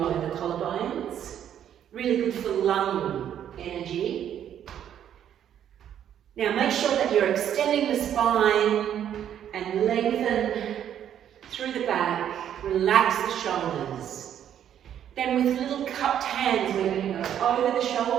the collarbones. Really good for lung energy. Now make sure that you're extending the spine and lengthen through the back. Relax the shoulders. Then with little cupped hands, we're going to go over the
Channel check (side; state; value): left; quieter; 9.9 dB